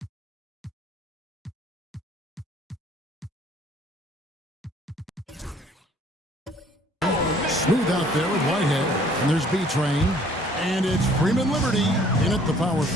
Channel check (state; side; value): normal; both; correlation 0.57